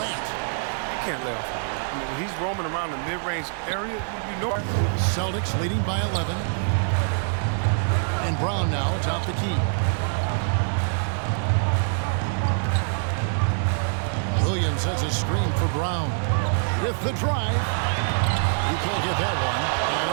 You can't lay off on that. I mean, when he's roaming around the mid-range area, you know. Celtics leading by 11. And Brown now atop the key. Williams has a screen for Brown. With the drive. You can't get that one.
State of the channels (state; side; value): silent; left; digital silence